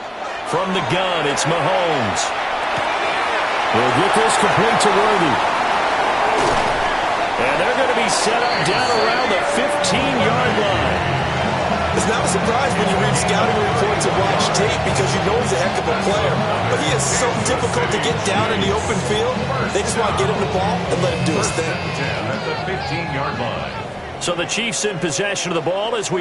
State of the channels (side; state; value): both; identical; correlation 1.00